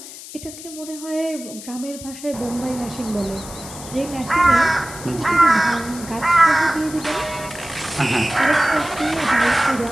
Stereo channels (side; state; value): left; noise; hiss, 14 dB below the sound